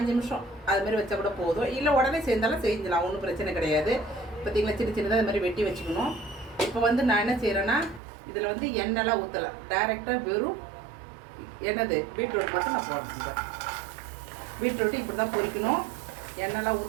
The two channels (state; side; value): drops out; left; at 8.0 s